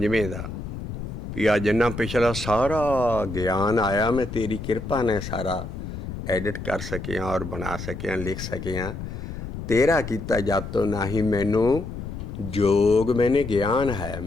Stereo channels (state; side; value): noise; left; rumble, 8 dB below the sound